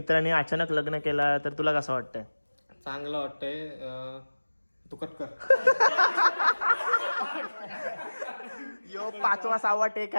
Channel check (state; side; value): inverted; both; correlation -1.00